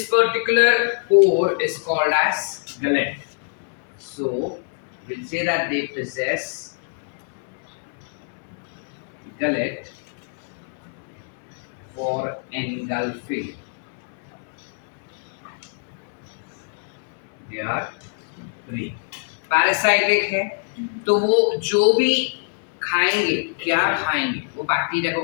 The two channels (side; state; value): right; silent; 63 dB below the other